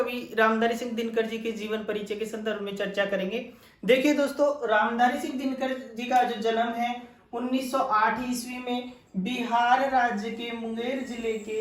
रामधारी सिंह दिनकर जी के जीवन परिचय के संदर्भ में चर्चा करेंगे। देखिए दोस्तों, रामधारी सिंह दिनकर जी का जो जन्म है 1908 ईस्वी में बिहार राज्य के मुंगेर जिले के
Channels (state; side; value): identical; both; correlation 1.00